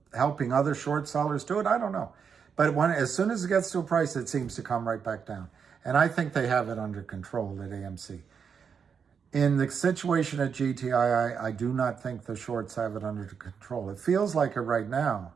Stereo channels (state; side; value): quieter; left; 6.6 dB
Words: helping other short sellers do it. I don't know. But as soon as it gets to a price, it seems to come right back down. And I think they have it under control at AMC. In the situation at GTII, I do not think the shorts have it under control. It feels like it right now,